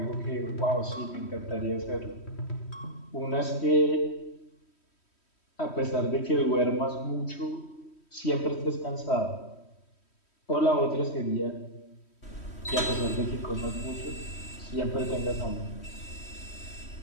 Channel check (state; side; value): late; right; 3.1 ms